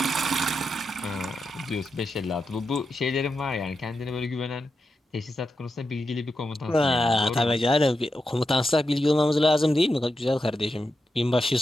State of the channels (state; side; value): normal; both; correlation 0.88